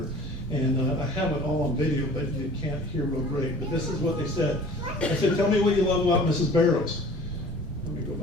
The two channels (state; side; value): normal; both; correlation 0.46